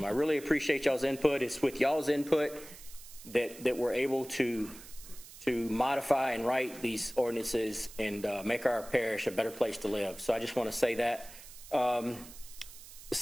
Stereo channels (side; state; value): right; noise; hiss, 17 dB below the sound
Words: I really appreciate y'all's input. It's with y'all's input that we're able to modify and write these ordinances and make our parish a better place to live. So I just want to say that. The